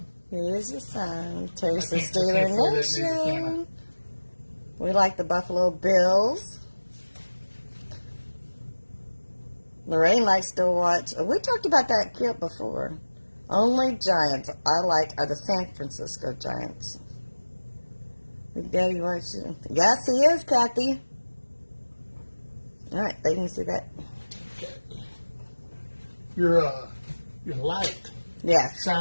Here's your sign. Terry's the I can't Steeler see that near the Nation. camera. We like the Buffalo Bills. Lorraine likes to watch. We talked about that clip before. Only Giants I like are the San Francisco Giants. Big Daddy watching. Yes, he is, Kathy. All right, they can see that. Your light Yes.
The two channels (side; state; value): both; inverted; correlation -1.00